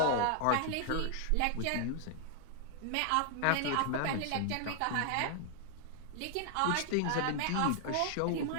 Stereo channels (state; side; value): different; both; correlation 0.00